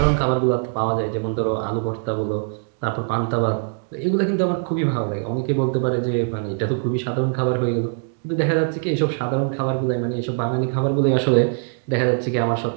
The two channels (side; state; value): left; silent; digital silence